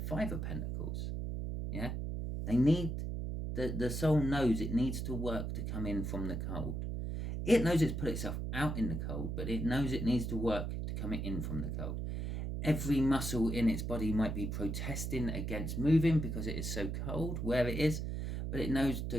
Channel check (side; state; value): right; noise; hum, 3 dB below the sound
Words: of Pentacles. Yeah, they need, the soul knows it needs to work to come in from the cold. It knows it's put itself out in the cold, but it knows it needs to work to come in from the cold. Every muscle in its body might be protesting against moving because it is so cold where it is, but it knows to